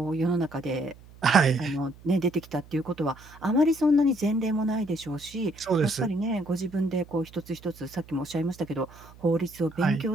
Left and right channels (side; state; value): right; noise; hum, 22 dB below the sound